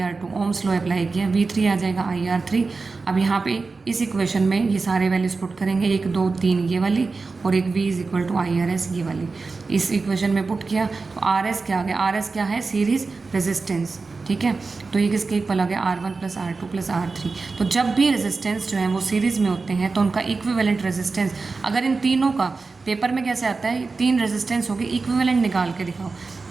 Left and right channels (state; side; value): quieter; left; 4.1 dB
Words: ओम्स लॉ अप्लाई किया, V3 आ जाएगा IR3। अब यहाँ पे इस इक्वेशन में ये सारे वैल्यूज पुट करेंगे, 1, 2, 3 ये वाली और एक V = IRS ये वाली, इस इक्वेशन में पुट किया तो RS क्या आ गया, RS क्या है, सीरीज रेजिस्टेंस। ठीक है, तो ये किसके इक्वल आ गया, R1 + R2 + R3। तो जब भी रेजिस्टेंस जो है वो सीरीज़ में होते हैं तो उनका इक्विवेलेंट रेजिस्टेंस, अगर इन तीनों का पेपर में कैसे आता है, 3 रेजिस्टेंस हो गए, इक्विवेलेंट निकाल के दिखाओ।